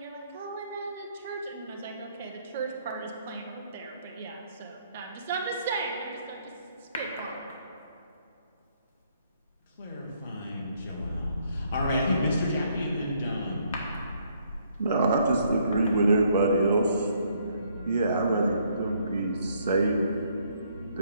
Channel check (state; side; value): inverted; both; correlation -0.69